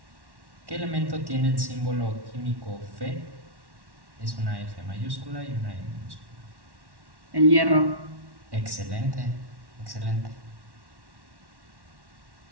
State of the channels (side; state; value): left; late; 1.1 ms